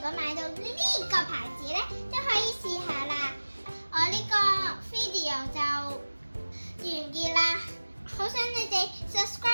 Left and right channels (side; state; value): both; inverted; correlation -1.00